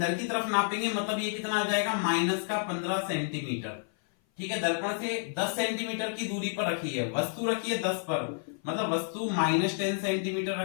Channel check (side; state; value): right; silent; 56 dB below the other